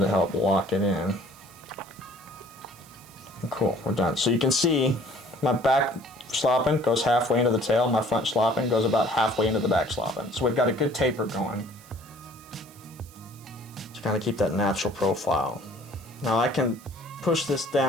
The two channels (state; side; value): noise; right; hiss, 23 dB below the sound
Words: help lock it in. Cool, we're done. So you can see my back schlappen goes halfway into the tail, my front schlappen goes about halfway into the back schlappen. So we've got a good taper going to kind of keep that natural profile. Now I can push this